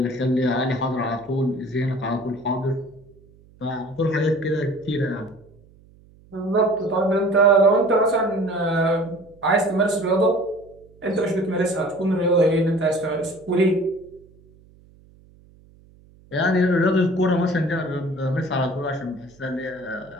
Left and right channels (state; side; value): noise; right; hum, 27 dB below the sound